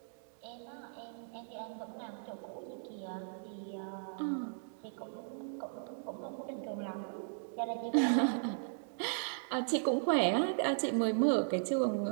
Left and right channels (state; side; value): silent; left; digital silence